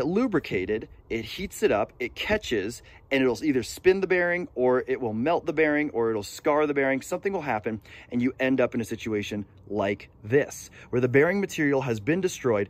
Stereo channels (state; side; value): identical; both; correlation 1.00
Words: lubricated, it heats it up, it catches, and it'll either spin the bearing, or it will melt the bearing, or it'll scar the bearing. Something will happen, and you end up in a situation like this, where the bearing material has been destroyed,